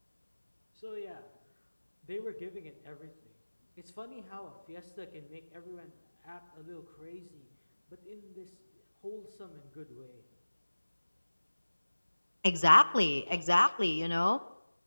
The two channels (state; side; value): inverted; both; correlation -1.00